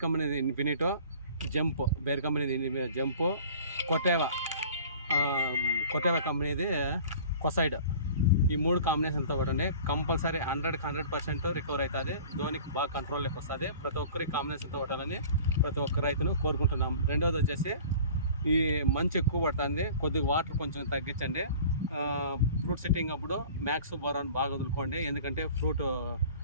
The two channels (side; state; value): both; inverted; correlation -0.44